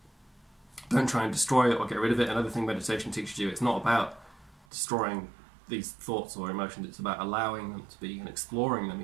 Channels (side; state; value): left; drops out; at 4.7 s